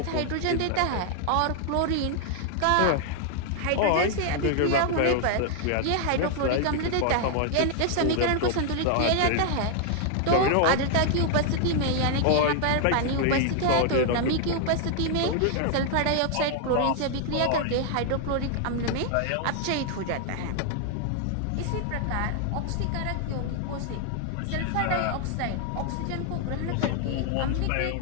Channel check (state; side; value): different; both; correlation 0.00